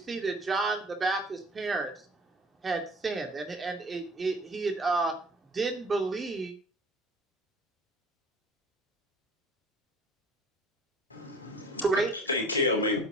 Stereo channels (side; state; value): both; normal; correlation 0.46